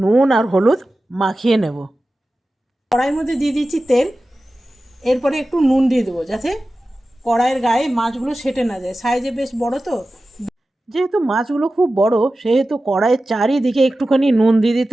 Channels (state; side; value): normal; both; correlation 0.95